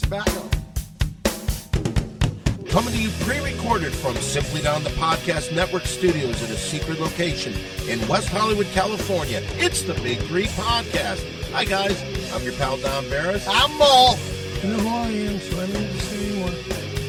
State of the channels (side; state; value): both; identical; correlation 1.00